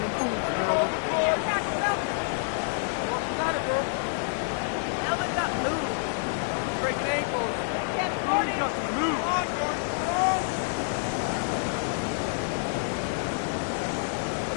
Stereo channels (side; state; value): right; silent; 55 dB below the other